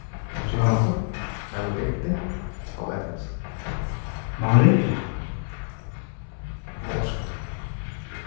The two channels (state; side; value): silent; right; 61 dB below the other